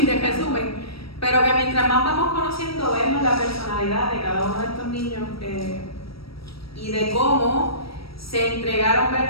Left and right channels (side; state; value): right; late; 0.75 ms